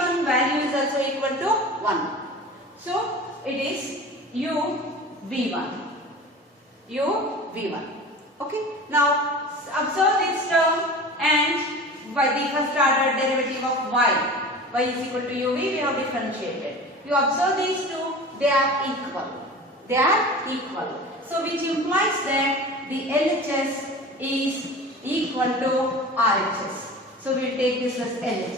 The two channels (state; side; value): normal; both; correlation 0.36